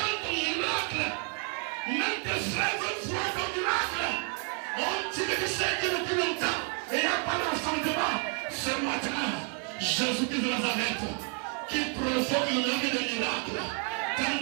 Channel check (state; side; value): quieter; left; 39.9 dB